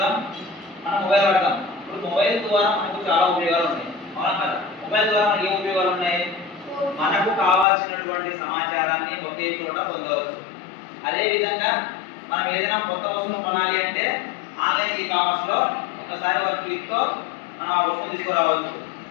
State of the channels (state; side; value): drops out; right; at 7.7 s